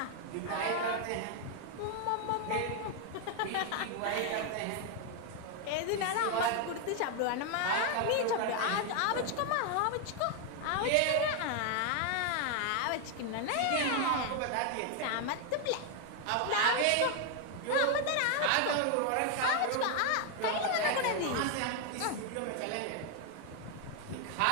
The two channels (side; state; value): both; different; correlation 0.01